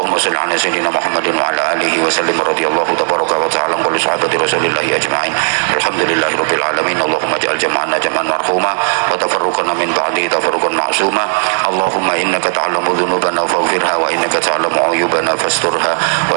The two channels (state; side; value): silent; left; 64 dB below the other